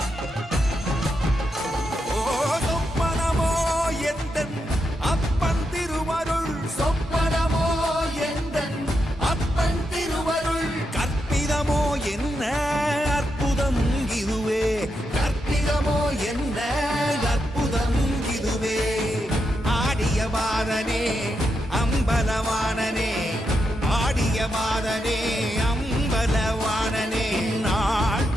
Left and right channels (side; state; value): both; normal; correlation 0.84